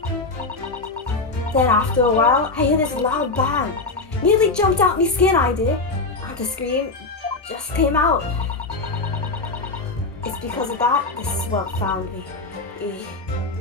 Then after a while, I hear this loud bang. Nearly jumped out me skin, I did. And the scream just came out. It's because of that this swell found me.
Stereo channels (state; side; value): quieter; right; 3.6 dB